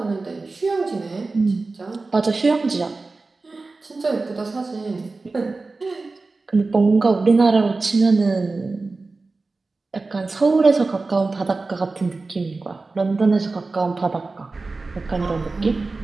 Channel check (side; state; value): left; quieter; 3.6 dB